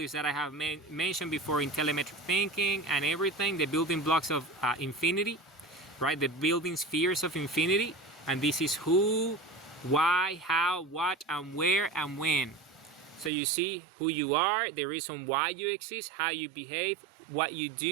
that I have mentioned before in telemetric thinking and everything, the building blocks of infinity, right? The building spheres of infinity. And this is who, why, how, what, and where, and when. So you see who you are, the reason why you exist, how you behave, what you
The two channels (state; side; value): drops out; left; at 13.3 s